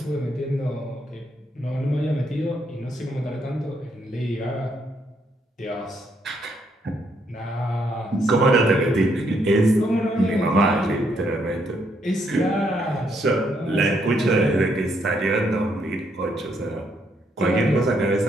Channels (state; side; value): normal; both; correlation 0.74